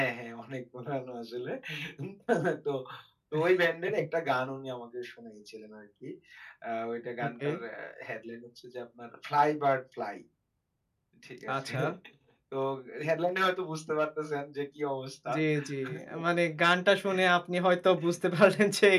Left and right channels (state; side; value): identical; both; correlation 1.00